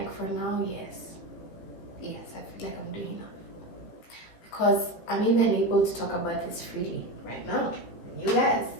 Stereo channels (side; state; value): right; late; 17 ms